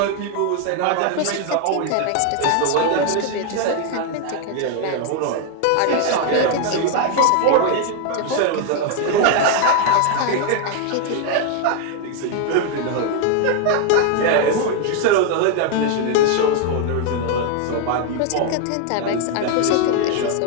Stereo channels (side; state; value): both; different; correlation 0.00